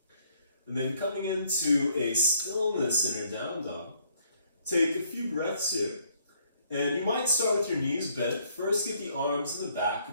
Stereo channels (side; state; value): both; inverted; correlation -0.66